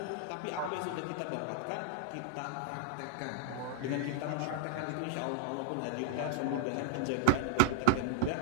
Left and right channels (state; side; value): different; both; correlation 0.00